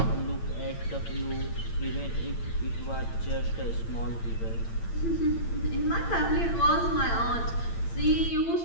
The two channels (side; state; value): right; late; 8.8 ms